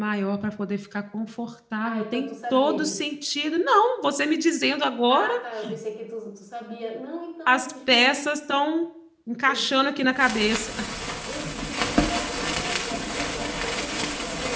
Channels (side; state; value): both; identical; correlation 1.00